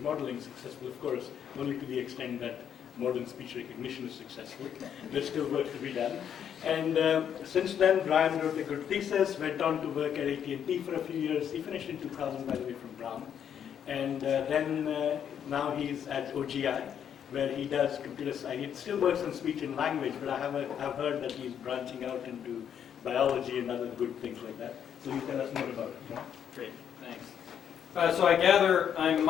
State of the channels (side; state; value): right; quieter; 8.8 dB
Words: modeling. Successful, of course, only to the extent that modern speech recognition is successful. There's still work to be done. And since then, Brian wrote a good thesis, went on to work at AT&T for a few years. He finished in 2000, by the way, from Brown. And then now he's at OGI, where he does computer science. He still works on speech and language, but I've heard that he's branching out into biology and other good things like that. So you tell us more about it. Great, thanks. So I gather I'm